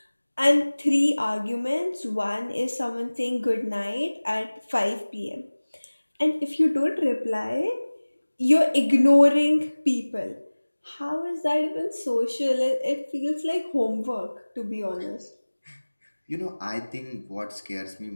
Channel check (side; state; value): both; inverted; correlation -1.00